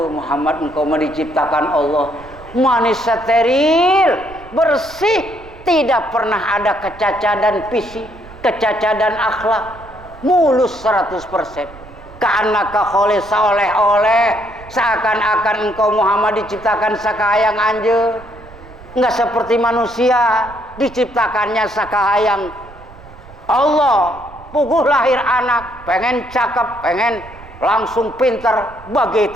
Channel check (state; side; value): noise; right; rumble, 20 dB below the sound